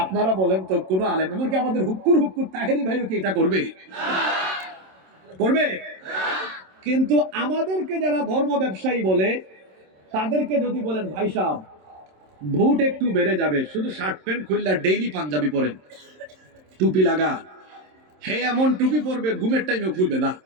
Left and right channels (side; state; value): left; late; 27 ms